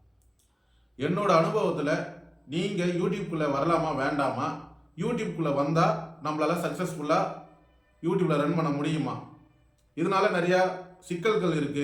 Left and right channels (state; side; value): identical; both; correlation 1.00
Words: என்னோட அனுபவத்தில் நீங்கள் யூடியூப்குள்ளே வரலாமா வேண்டாமா, யூடியூப்குள்ளே வந்தால் நம்மளால் சக்ஸஸ்ஃபுல்லாக யூடியூப்பில் ரன் பண்ண முடியுமா? இதனால் நிறையா சிக்கல்கள்